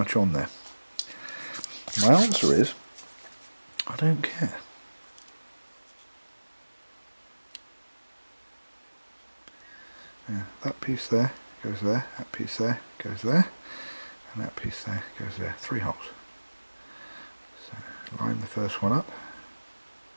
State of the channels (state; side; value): inverted; both; correlation -1.00